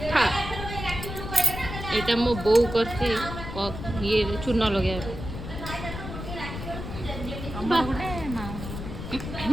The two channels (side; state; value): left; noise; rumble, 8 dB below the sound